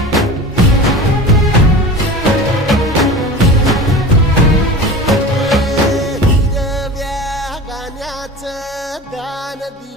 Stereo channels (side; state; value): both; normal; correlation 0.33